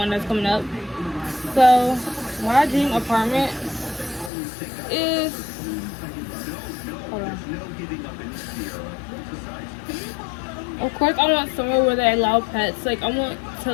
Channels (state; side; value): drops out; right; at 4.3 s